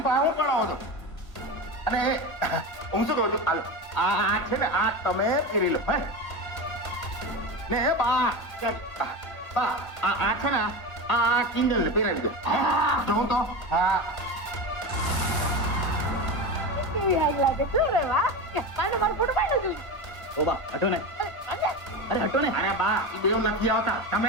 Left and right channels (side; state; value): right; late; 1.8 ms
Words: પાસે હું પડાવો છો? અને હું શું કહું છું, હાલો આ છે ને આ તમે પહેરી લો. હે ને બા બા આ છે ને આ કિંજલ ને પહેરાવી દો. જોઉં તો. હા, કેવી આગ લાગે છે રે વાહ. પાને મારો ફોટો પાડો જો. ઓ બા હટો ને. અરે હટો ને. અરે બા એ બેવ નથી આવતા, તમે